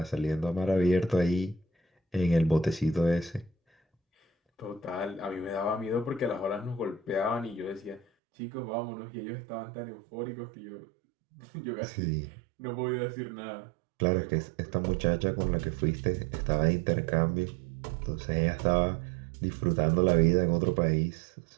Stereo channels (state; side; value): drops out; left; at 8.1 s